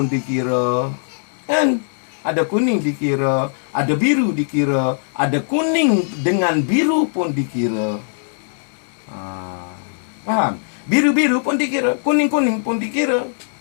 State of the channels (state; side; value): silent; right; digital silence